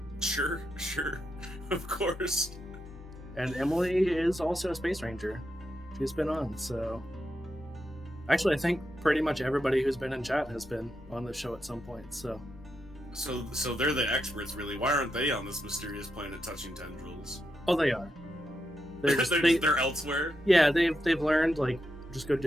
Sure. Of course. And Emily is also a space ranger. She's been on, so... Actually, I think pretty much everybody who's been in chat has been on the show at some point, so... So they're the experts, really. Why aren't they on this mysterious planet touching tendrils? Oh, they are. They're elsewhere? Yeah, they've learned, like, just go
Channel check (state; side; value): normal; both; correlation 0.85